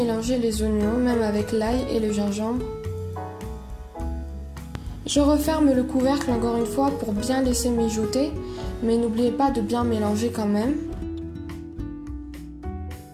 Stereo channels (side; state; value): both; identical; correlation 1.00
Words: les oignons, même avec l'ail et le gingembre. Je referme le couvercle encore une fois pour bien laisser mijoter. Mais n'oubliez pas de bien mélanger quand même.